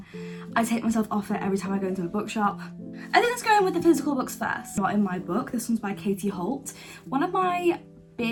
I take myself off it every time I go into a bookshop. I think let's go in with the physical books first. Not in my book. This one's by Katie Holt. One of my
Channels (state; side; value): identical; both; correlation 1.00